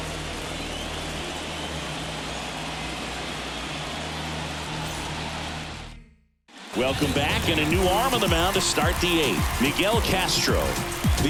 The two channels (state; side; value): identical; both; correlation 1.00